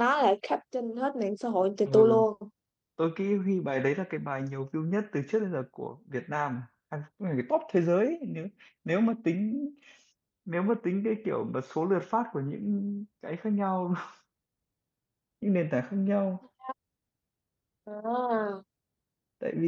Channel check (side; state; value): both; identical; correlation 1.00